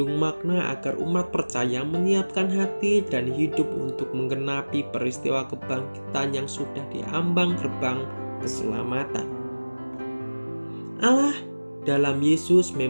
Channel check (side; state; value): both; inverted; correlation -1.00